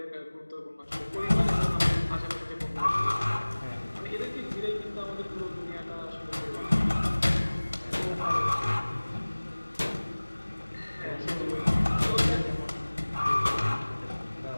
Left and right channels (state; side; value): inverted; both; correlation -1.00